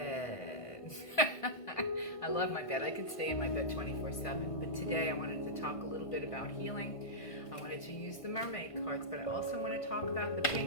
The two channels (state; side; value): late; right; 1.5 ms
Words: I love my bed. I could stay in my bed 24/7. But today I wanted to talk a little bit about healing. I wanted to use the Mermaid cards, but I also want to talk about the